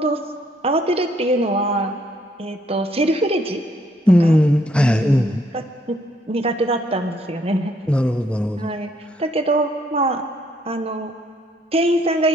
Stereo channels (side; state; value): both; normal; correlation 0.69